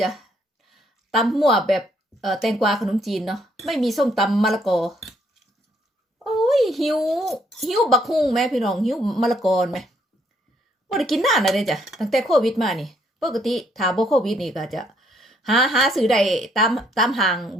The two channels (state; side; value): normal; both; correlation 0.69